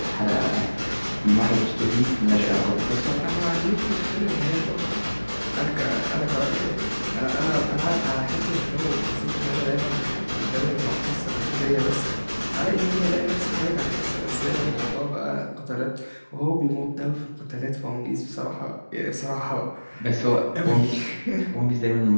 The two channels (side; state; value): both; inverted; correlation -1.00